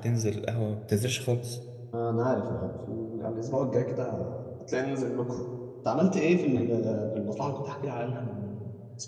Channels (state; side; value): identical; both; correlation 1.00